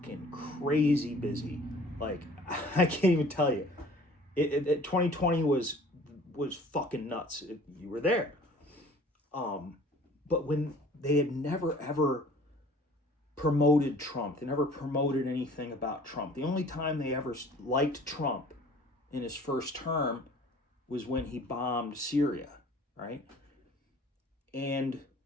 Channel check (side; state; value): both; normal; correlation 0.50